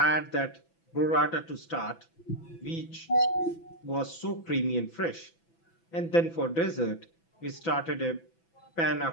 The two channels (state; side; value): late; right; 6.0 ms